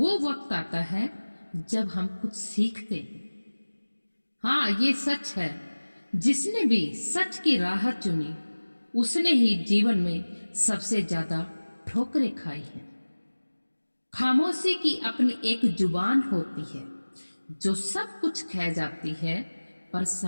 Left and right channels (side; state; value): both; inverted; correlation -1.00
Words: वक्त आता है जब हम कुछ सीखते हैं। हाँ, ये सच है। जिसने भी सच की राह चुनी, उसने ही जीवन में सबसे ज्यादा ठोकरें खाई हैं। खामोशी की अपनी एक जुबान होती है जो सब कुछ कह जाती है, पर